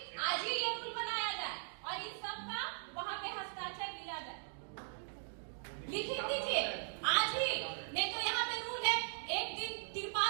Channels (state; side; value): silent; left; digital silence